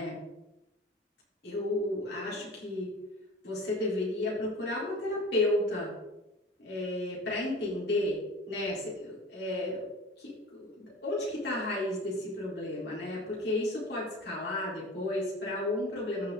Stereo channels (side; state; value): both; normal; correlation 0.38